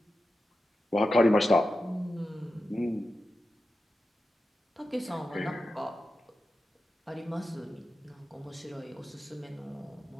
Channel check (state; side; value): normal; both; correlation 0.91